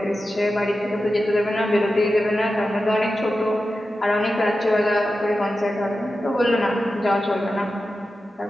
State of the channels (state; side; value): normal; both; correlation 0.92